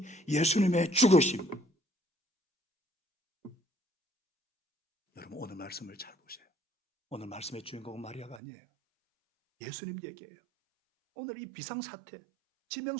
예수님의 죽으심. 여러분 오늘 말씀을 잘 보세요. 오늘 말씀의 주인공은 마리아가 아니에요. 예수님 얘기예요. 오늘 이 비상사태,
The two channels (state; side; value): drops out; left; at 8.4 s